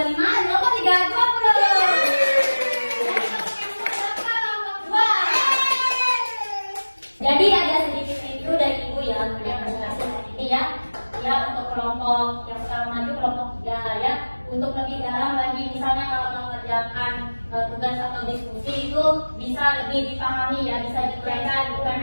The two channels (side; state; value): both; inverted; correlation -1.00